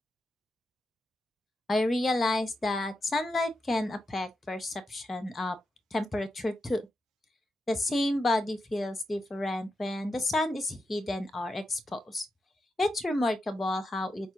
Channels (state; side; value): normal; both; correlation 0.87